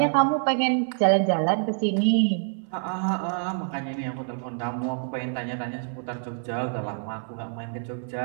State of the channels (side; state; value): left; silent; 61 dB below the other